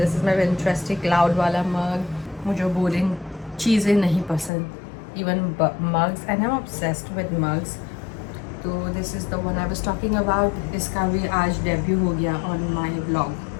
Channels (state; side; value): drops out; right; at 4.5 s